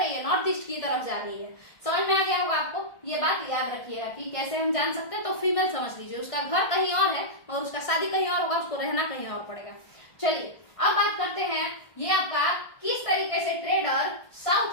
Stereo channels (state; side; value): late; right; 1.5 ms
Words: है? नॉर्थ ईस्ट की तरफ जा रही है। समझ में आ गया होगा आपको। ये बात याद रखिएगा कि कैसे हम जान सकते हैं। तो फीमेल समझ लीजिए, उसका घर कहीं और है और उसका शादी कहीं और होगा, उसको रहना कहीं और पड़ेगा। चलिए अब बात करते हैं, ये आपका किस तरीके से ट्रेडर